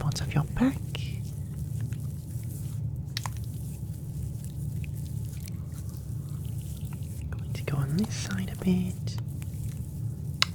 of your back. Going to go on this side a bit.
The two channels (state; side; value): identical; both; correlation 1.00